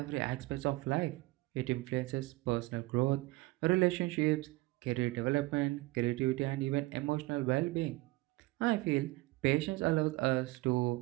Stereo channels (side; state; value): left; quieter; 21.1 dB